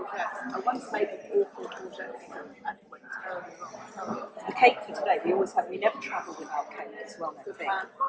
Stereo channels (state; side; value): identical; both; correlation 1.00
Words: I once made an awful courgette and it went terribly wrong. The cake for today, we never travel without cake, it's well known thing.